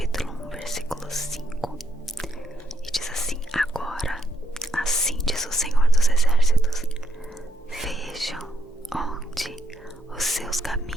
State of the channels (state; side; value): normal; both; correlation 0.76